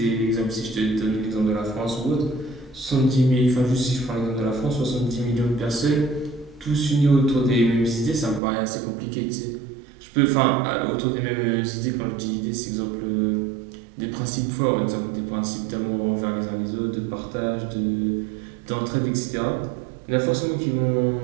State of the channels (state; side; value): drops out; left; at 8.4 s